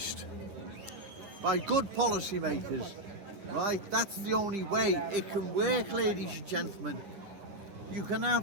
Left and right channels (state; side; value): late; left; 9.9 ms